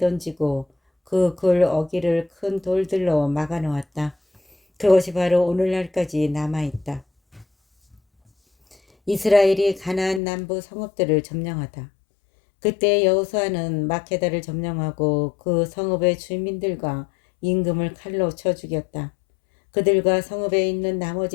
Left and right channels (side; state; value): right; drops out; at 10.2 s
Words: 그 굴 어귀를 큰 돌들로 막아 놓았다. 그것이 바로 오늘날까지 남아있다. 이스라엘이 가나안 남부 성읍들을 점령하다. 그때 여호수아는 마케다를 점령하고 그 성읍의 주민들과 임금을 칼로 쳐 죽였다. 그들과 성읍에 있는